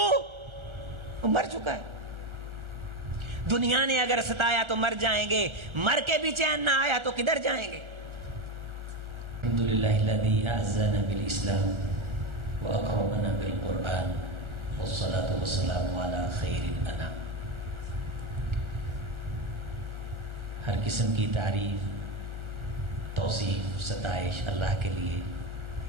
مر چکا ہے۔ دنیا نے اگر ستایا تو مر جائیں گے، مر کے بھی چین نہ آیا تو کدھر جائیں گے؟ الحمدللہ الذی اعزنا بالاسلام واکرمنا بالقرآن والصلاة والسلام علی خیر الانام۔ ہر قسم کی تعریف، توصیف، ستائش اللہ کے لیے،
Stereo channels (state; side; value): late; left; 1.4 ms